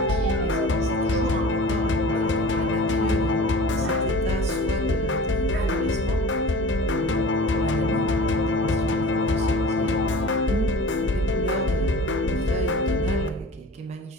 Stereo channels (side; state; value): both; normal; correlation 0.41